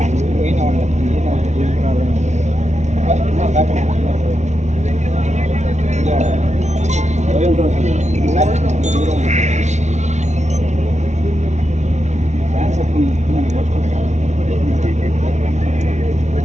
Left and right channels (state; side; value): late; left; 0.33 ms